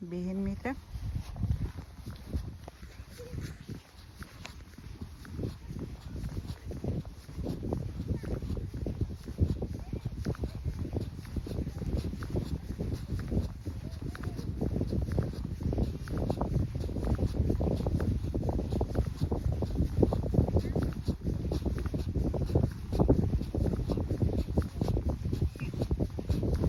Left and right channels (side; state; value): both; identical; correlation 1.00